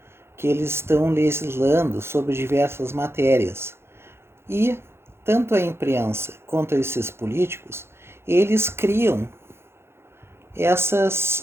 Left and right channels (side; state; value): left; late; 0.12 ms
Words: que eles estão legislando sobre diversas matérias. E tanto a imprensa quanto esses políticos, eles criam